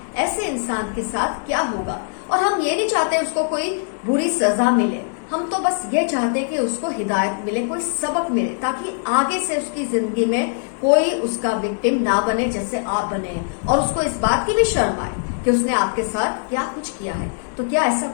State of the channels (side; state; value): right; silent; digital silence